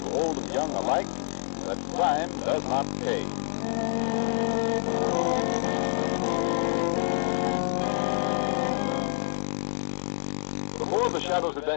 old and young alike that crime does not pay. Before The Shadow's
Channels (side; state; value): right; silent; digital silence